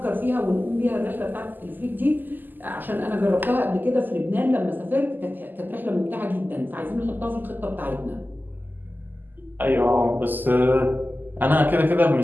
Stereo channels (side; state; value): left; late; 0.088 ms